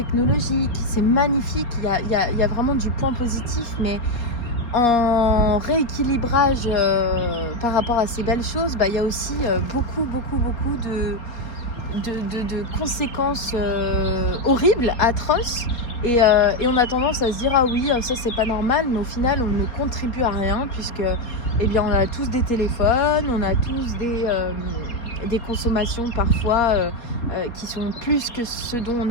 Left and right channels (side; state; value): right; late; 4.5 ms